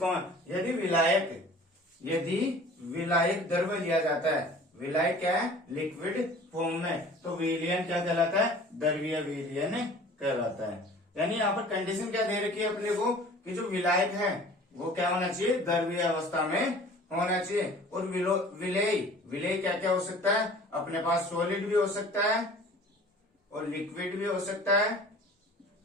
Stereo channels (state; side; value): normal; both; correlation 0.46